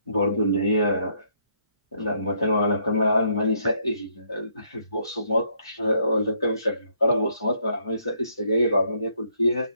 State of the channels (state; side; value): inverted; both; correlation -0.70